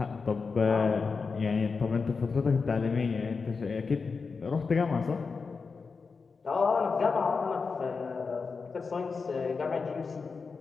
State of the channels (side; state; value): right; quieter; 4.8 dB